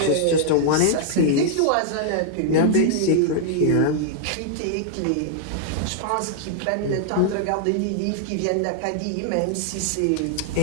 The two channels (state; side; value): different; both; correlation -0.01